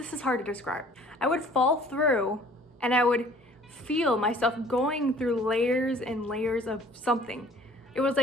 hard to describe. I would fall through, and I would feel myself going through layers and layers of something. It was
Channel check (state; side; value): normal; both; correlation 0.53